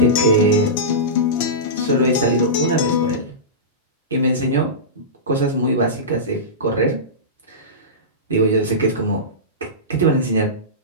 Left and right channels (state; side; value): normal; both; correlation -0.18